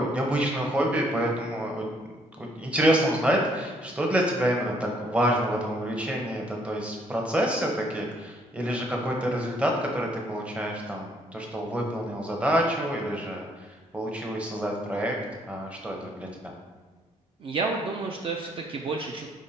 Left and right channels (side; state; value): both; normal; correlation 0.67